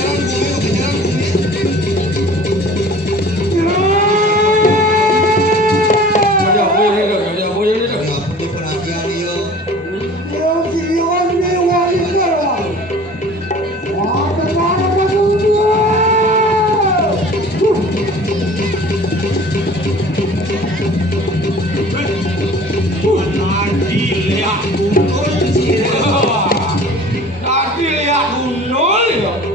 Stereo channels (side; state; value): both; normal; correlation 0.45